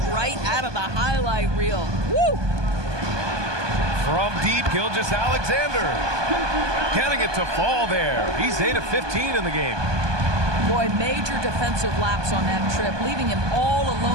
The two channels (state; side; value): late; left; 1.2 ms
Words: right out of the highlight reel. Woo! From deep, Gilgeous-Alexander. Getting it to fall there. He's 8 of 15 in the game. Boy, major defensive lapse on that trip, leaving him all